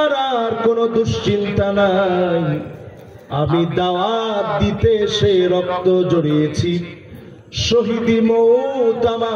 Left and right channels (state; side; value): identical; both; correlation 1.00